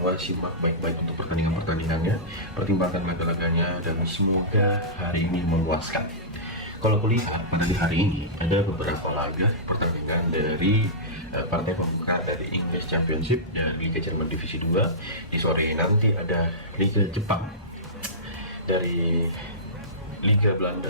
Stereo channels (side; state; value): both; normal; correlation -0.18